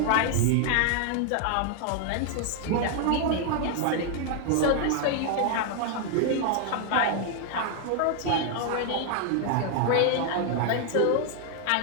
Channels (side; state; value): both; different; correlation 0.00